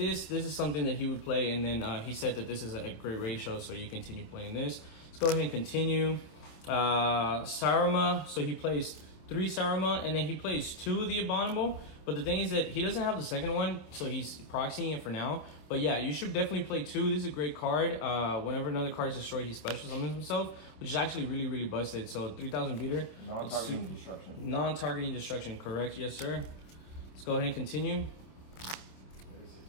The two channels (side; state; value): right; late; 27 ms